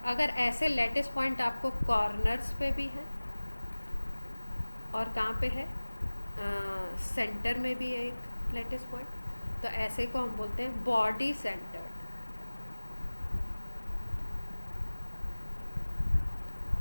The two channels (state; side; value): inverted; both; correlation -1.00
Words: अगर ऐसे लैटिस पॉइंट आपको कॉर्नर्स पे भी है और कहाँ पे है? सेंटर में भी है एक लैटिस पॉइंट, तो ऐसे को हम बोलते हैं body centred.